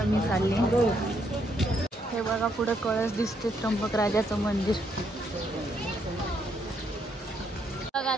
मी चालले. हे बघा पुढे कळस दिसते त्र्यंबक राजाचं मंदिर. बघा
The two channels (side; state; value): both; normal; correlation 0.74